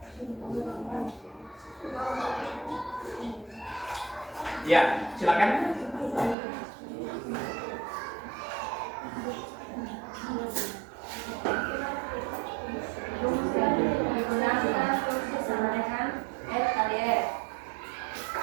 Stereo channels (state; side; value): drops out; left; at 6.4 s